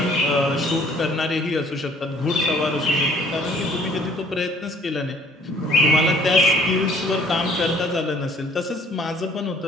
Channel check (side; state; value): both; normal; correlation 0.57